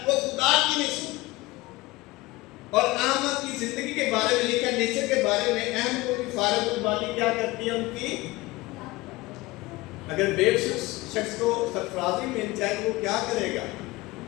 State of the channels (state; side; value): quieter; right; 20.7 dB